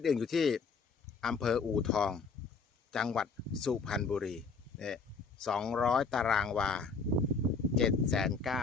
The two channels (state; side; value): quieter; right; 4.7 dB